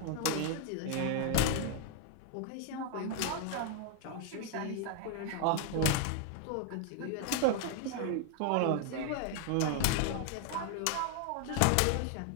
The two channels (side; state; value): both; different; correlation 0.00